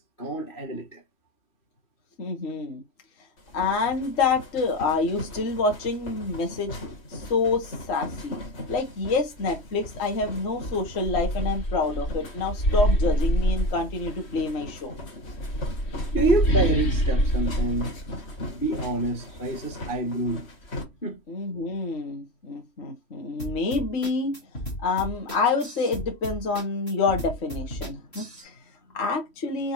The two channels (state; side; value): late; right; 3.1 ms